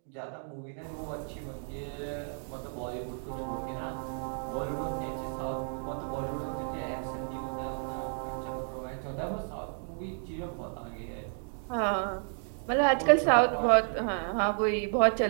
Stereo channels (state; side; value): silent; left; 56 dB below the other